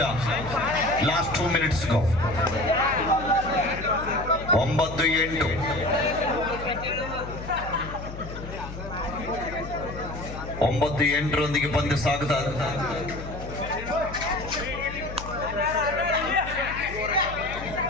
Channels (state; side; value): noise; left; hum, 10 dB below the sound